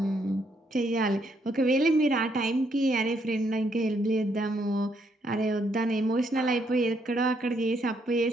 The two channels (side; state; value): both; normal; correlation 0.74